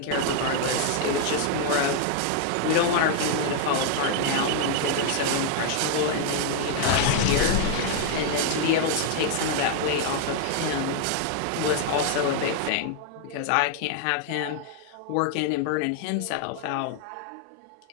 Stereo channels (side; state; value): both; different; correlation 0.00